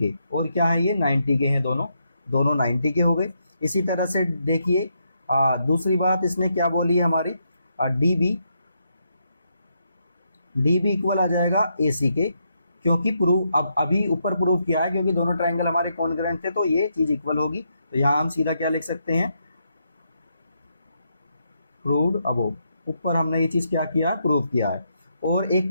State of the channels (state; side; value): inverted; both; correlation -0.79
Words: और क्या है ये 90 के हैं, दोनों 90 के हो गए। इसी तरह से देखिए दूसरी बात इसने क्या बोली है हमारी, डी बी इक्वल आ जाएगा ए सी के, क्योंकि प्रूव अब अभी ऊपर प्रूव किया है, क्योंकि दोनों ट्राइंगल हमारे कॉन्ग्रुएंट थे, तो ये चीज इक्वल होगी। तो यहाँ हम सीधा क्या लिख सकते हैं, प्रूव्ड अबोव, ऊपर हमने ये चीज क्या किया, प्रूव किया है। और एक